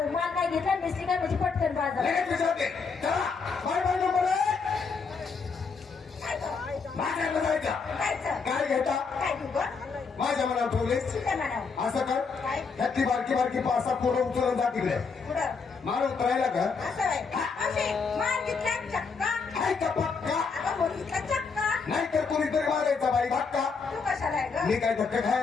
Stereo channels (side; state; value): right; quieter; 5.1 dB